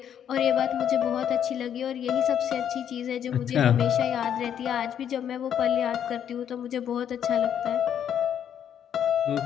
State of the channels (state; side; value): quieter; right; 9.2 dB